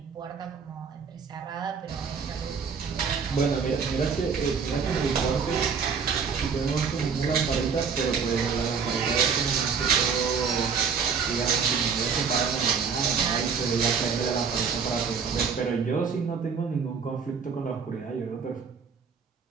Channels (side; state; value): left; quieter; 6.0 dB